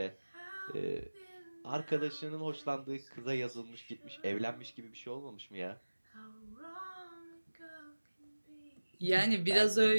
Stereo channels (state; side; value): inverted; both; correlation -1.00